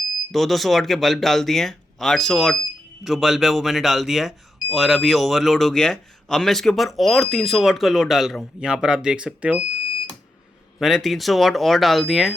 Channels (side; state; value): both; normal; correlation 0.85